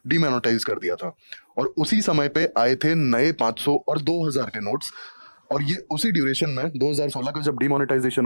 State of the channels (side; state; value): both; inverted; correlation -1.00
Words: डिमोनेटाइज कर दिया था। और उसी समय पे आए थे नए 500 और 2000 के नोट्स। और ये उसी ड्यूरेशन में 2016 का जब डिमोनेटाइजेशन